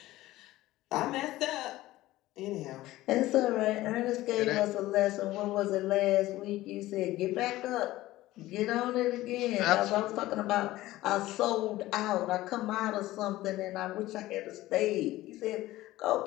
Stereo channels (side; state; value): right; quieter; 16.6 dB